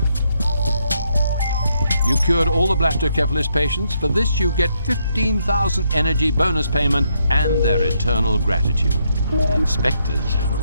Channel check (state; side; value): inverted; both; correlation -0.76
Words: You cured all the blastocephalus patients. For this, you get 15,000 energy bonus payment and their eternal gratitude. The inspectors